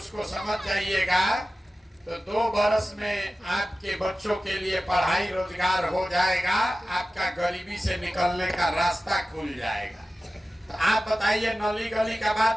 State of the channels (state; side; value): normal; both; correlation 0.95